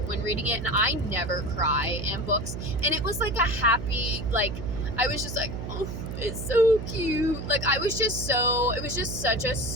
when reading it, and I never cry in books. And it was a happy, I was just oh, it's so cute. It was just such a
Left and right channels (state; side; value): noise; right; hum, 6 dB below the sound